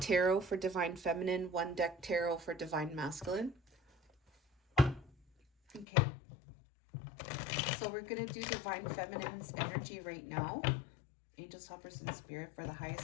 tarot for divine feminine, one deck tarot for divine masculine. Okay. So we're going to do divine feminine's energy right now. Angels, helpers, and spirit for the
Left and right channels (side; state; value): right; drops out; at 5.9 s